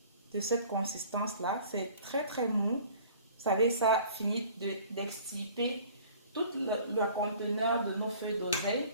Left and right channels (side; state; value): both; inverted; correlation -0.50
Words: de cette consistance-là. C'est très très mou. Vous savez, ça finit d'extirper tout le conteneur de nos feuilles d'oseille.